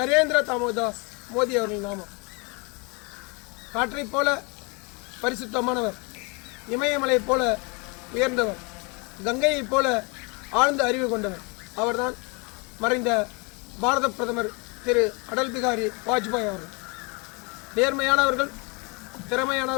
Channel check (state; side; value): quieter; right; 30.9 dB